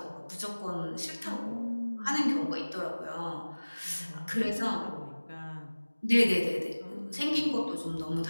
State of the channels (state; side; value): inverted; both; correlation -1.00